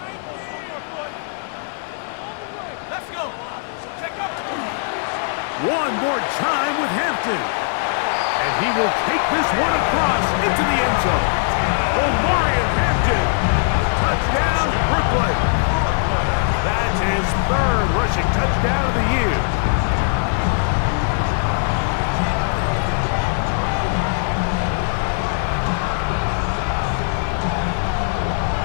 Let's go. Check up. One more time with Hampton. And he will take this one across into the end zone. Omarion Hampton. Touchdown, Brooklyn. That's his third rushing touchdown of the year.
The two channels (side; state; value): right; silent; digital silence